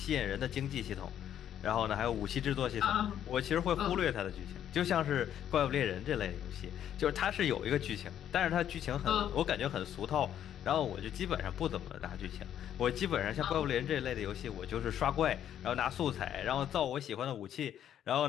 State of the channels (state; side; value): quieter; right; 10.3 dB